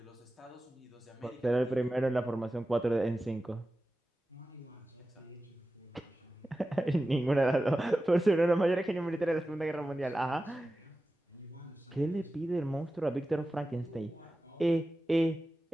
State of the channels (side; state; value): both; normal; correlation 0.94